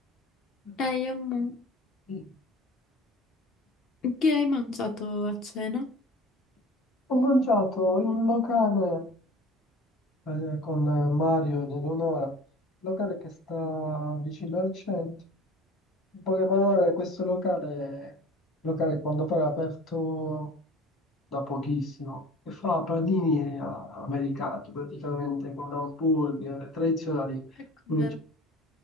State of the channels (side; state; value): both; normal; correlation 0.43